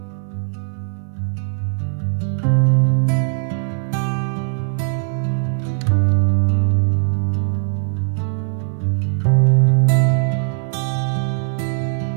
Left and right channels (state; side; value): silent; left; 66 dB below the other